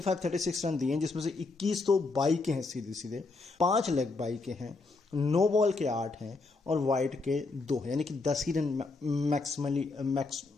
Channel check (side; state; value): right; quieter; 3.7 dB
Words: रन दिए, जिसमें से 21 तो बाई के हैं सीधे सीधे, 5 लेग बाई के हैं, नो बॉल के 8 हैं और वाइड के 2 हैं, यानी कि 10 ही रन मैक्सिमम